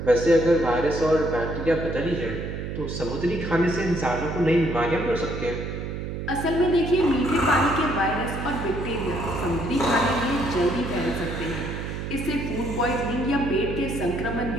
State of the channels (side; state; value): right; noise; hum, 5 dB below the sound